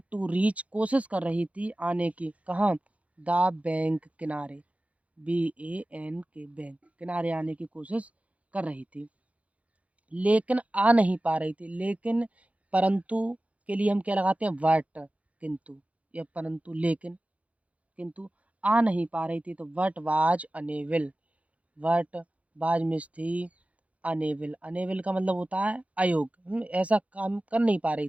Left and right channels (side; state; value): left; late; 0.066 ms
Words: टू रीच, कोशिश कर रही थी आने की, कहाँ? द बैंक, किनारे, BANK, बैंक, किनारे आने की कोशिश कर रही थी, लेकिन आ नहीं पा रही थी। लेकिन, परंतु के लिए हम क्या लगाते हैं? बट, किंतु, या परंतु, लेकिन, किंतु आ नहीं पा रही थी। तो what was unable, what was miss थी, अनेबल। अनेबल का मतलब होता है अयोग्य, ऐसा काम कर नहीं पा रही